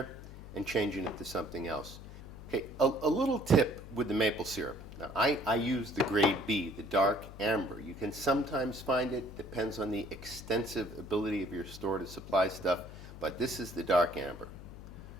and change it into something else. Okay, a little tip with the maple syrup. Now, I use the grade B, the dark amber. You can sometimes find it, depends on the extensive ability of your store to supply stuff, but this is the dark amber.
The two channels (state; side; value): noise; left; hum, 14 dB below the sound